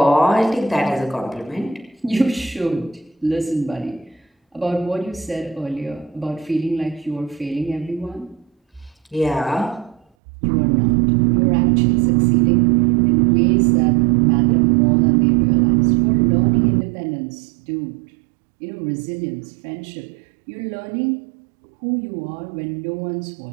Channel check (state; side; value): drops out; left; at 10.1 s